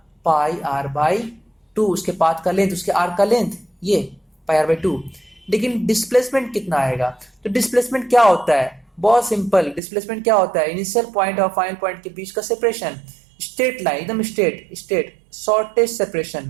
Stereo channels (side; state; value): left; drops out; at 9.8 s